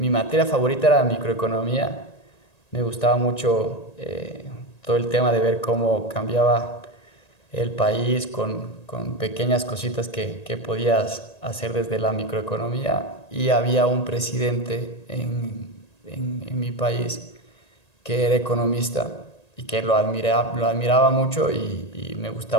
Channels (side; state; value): right; late; 1.9 ms